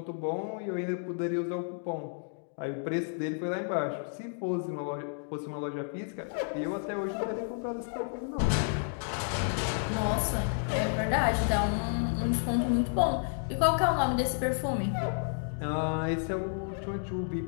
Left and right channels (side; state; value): right; silent; 57 dB below the other